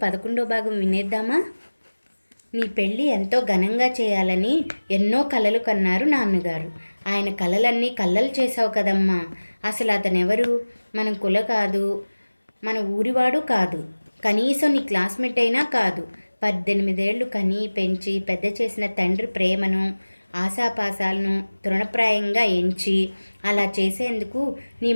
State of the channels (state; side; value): inverted; both; correlation -1.00